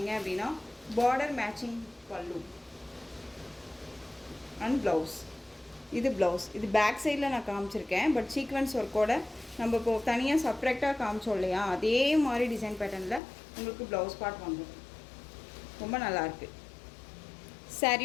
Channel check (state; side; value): drops out; right; at 13.2 s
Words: அப்படின்னா பார்டர் மேட்சிங் பல்லு அண்ட் ப்ளவுஸ். இது ப்ளவுஸ். இது பேக் சைடில் நான் காமிச்சிருக்கேன். பட் சீக்வன்ஸ் ஒர்க்கோட நம்ம இப்போது தனியாக செப்ரேட்டாக காமிச்சோம் இல்லையா அதே மாதிரி டிசைன் பேட்டர்னில் உங்களுக்கு ப்ளவுஸ் பார்ட் வந்துடும். ரொம்ப நல்லாயிருக்கு.